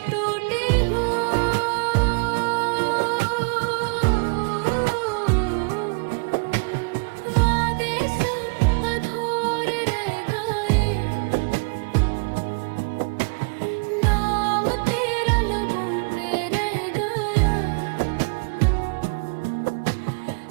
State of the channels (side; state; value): left; quieter; 35.0 dB